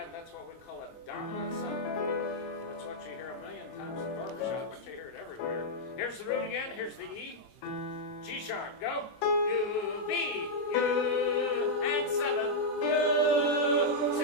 That's what we call a dominant seventh. That's what you hear a million times in barbershop, but you hear it everywhere. Here's the root again, here's the E. G sharp, go. U, B, U, and seventh, U.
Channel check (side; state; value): right; late; 23 ms